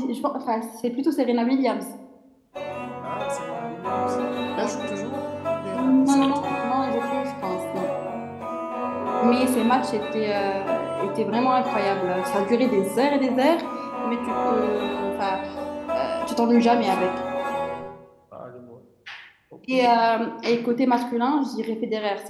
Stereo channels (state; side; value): identical; both; correlation 1.00